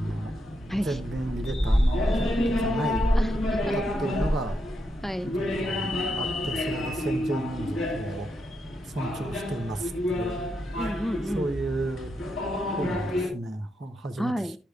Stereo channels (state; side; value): normal; both; correlation 0.82